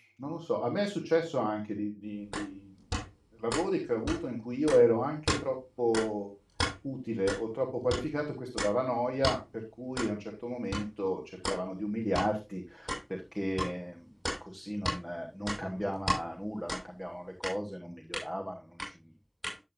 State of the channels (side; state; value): both; identical; correlation 1.00